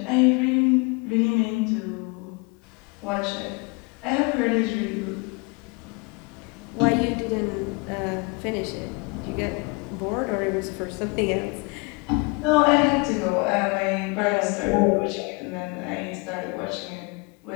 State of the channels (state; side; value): quieter; right; 29.5 dB